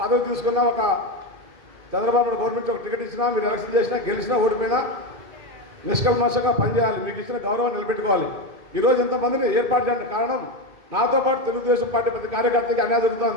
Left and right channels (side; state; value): left; late; 2.5 ms